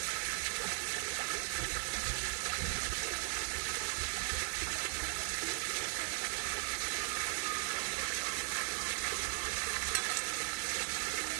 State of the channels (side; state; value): left; silent; 53 dB below the other